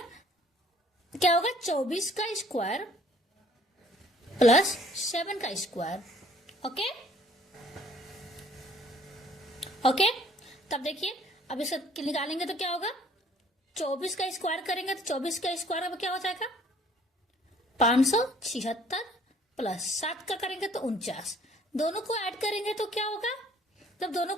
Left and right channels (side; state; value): both; normal; correlation 0.57